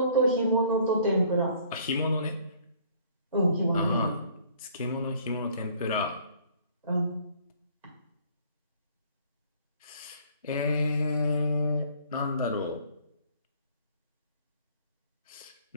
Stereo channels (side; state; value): both; inverted; correlation -0.57